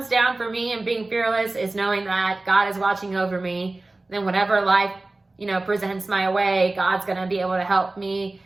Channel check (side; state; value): left; quieter; 3.0 dB